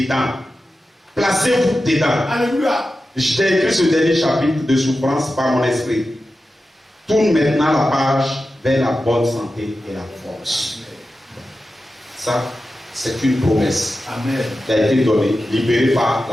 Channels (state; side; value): normal; both; correlation 0.92